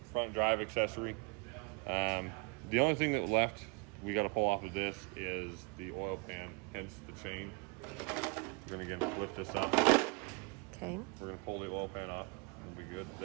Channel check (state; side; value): quieter; left; 31.7 dB